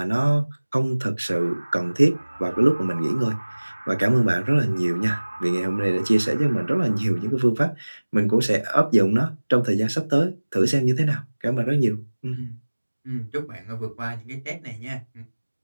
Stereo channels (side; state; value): both; inverted; correlation -1.00